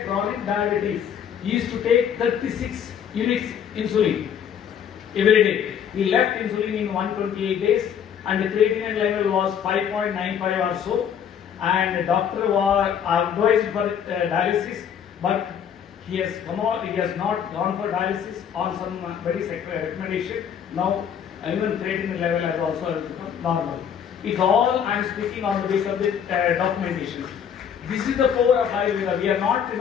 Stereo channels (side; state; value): right; quieter; 8.3 dB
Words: chronic diabetes. He used to take 36 units insulin every day. He left insulin in 128 days, and the creatinine level was 5.95 or so. And the doctor was advised for dialysis, but he has come out. He has not gone for dialysis on some very recommendation. Now even creatinine level has also become normal. It's all I am speaking on the basis of the documentation. This is the power of Ayurveda. We are not,